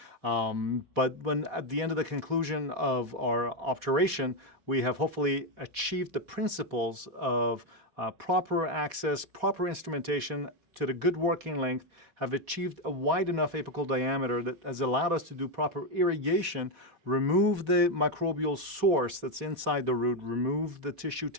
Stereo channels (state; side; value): late; left; 4.1 ms